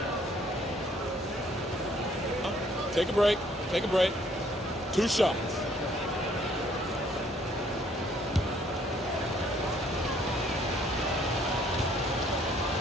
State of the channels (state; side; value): normal; both; correlation 0.63